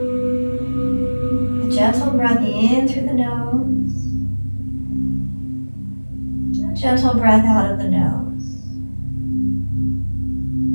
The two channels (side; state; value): both; inverted; correlation -1.00